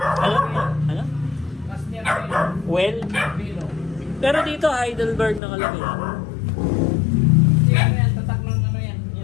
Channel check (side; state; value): right; drops out; at 5.4 s